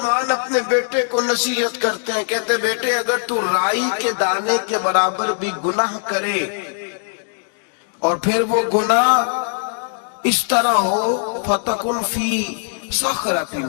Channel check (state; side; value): silent; right; digital silence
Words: اپنے بیٹے کو نصیحت کرتے ہیں، کہتے بیٹے اگر تو رائی کے دانے کے برابر بھی گناہ کرے اور پھر وہ گناہ اس طرح ہو فَتَكُنْ فِي صَخْرَةٍ